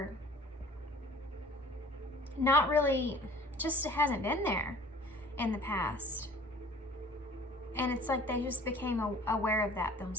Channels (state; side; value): normal; both; correlation 0.49